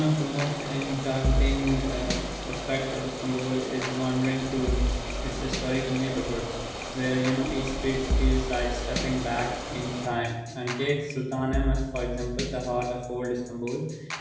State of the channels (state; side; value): identical; both; correlation 1.00